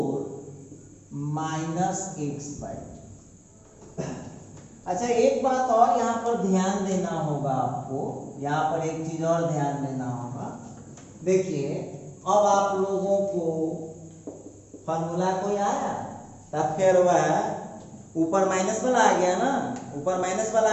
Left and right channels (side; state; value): both; identical; correlation 1.00